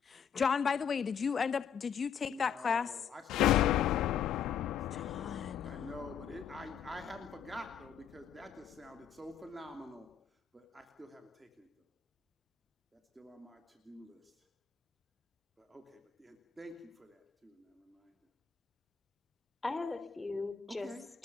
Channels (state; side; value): quieter; right; 7.8 dB